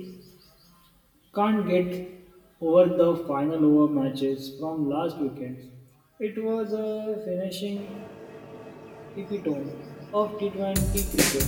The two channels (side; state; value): both; identical; correlation 1.00